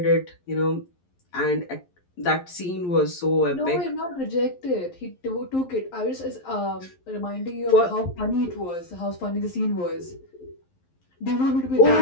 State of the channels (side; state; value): right; late; 11 ms